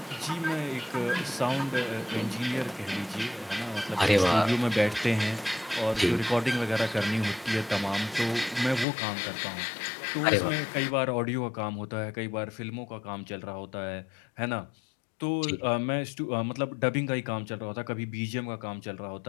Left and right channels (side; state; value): right; drops out; at 8.8 s